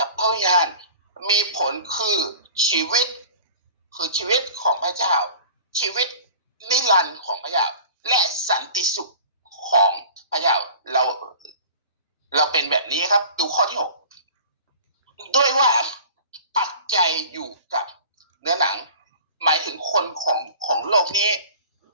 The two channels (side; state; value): both; inverted; correlation -0.43